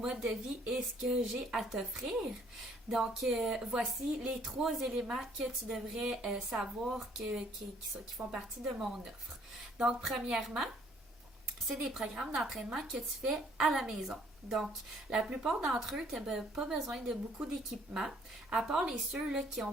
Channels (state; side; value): normal; both; correlation 0.62